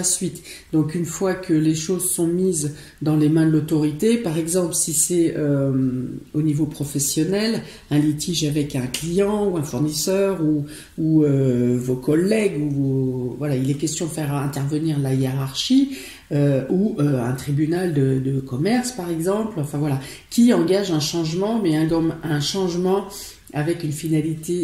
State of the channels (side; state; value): both; identical; correlation 1.00